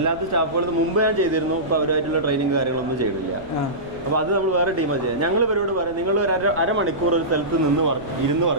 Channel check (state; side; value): noise; right; rumble, 20 dB below the sound